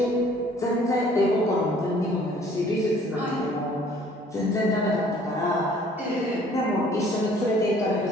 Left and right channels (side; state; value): both; normal; correlation 0.56